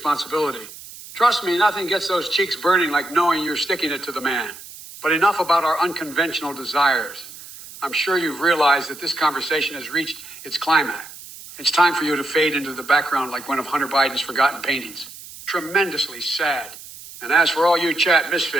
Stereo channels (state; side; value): noise; right; hiss, 16 dB below the sound